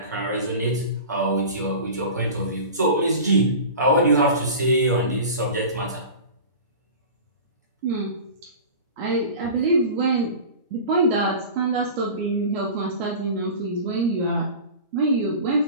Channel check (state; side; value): inverted; both; correlation -0.35